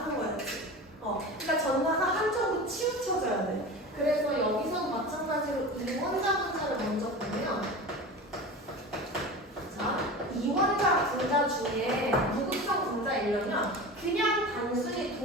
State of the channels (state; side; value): normal; both; correlation 0.31